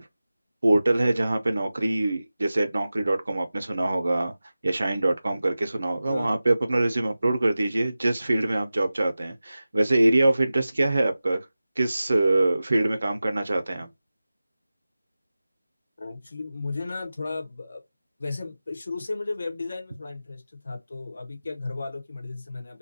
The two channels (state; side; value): inverted; both; correlation -0.95